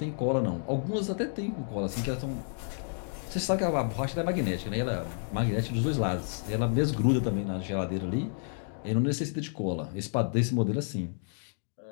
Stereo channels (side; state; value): right; silent; digital silence